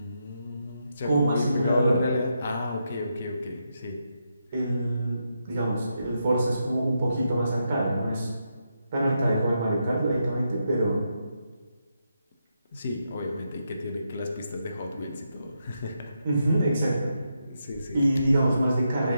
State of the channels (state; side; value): inverted; both; correlation -0.83